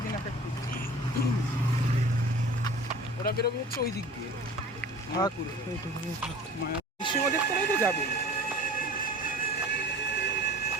এক এক দিক। ওরা বেরোবে হচ্ছে ওই দিক দিয়ে থাক, এইটুকুনি থাক। নৃসিংহদেব তলায় তো যাবে,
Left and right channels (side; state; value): both; normal; correlation 0.42